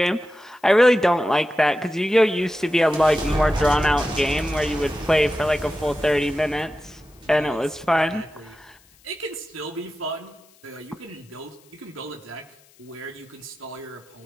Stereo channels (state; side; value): noise; left; hiss, 30 dB below the sound